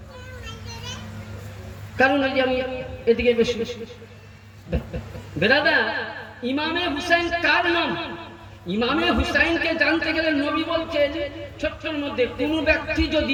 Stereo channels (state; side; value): identical; both; correlation 1.00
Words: কারণ ওই যে আমি এদিকে বেশি বেরাদা। ইমামে হুসাইন কার নাম? ইমামে হুসাইনকে জানতে গেলে নবী বলছেন ছোট্টর মধ্যে কোন ব্যক্তি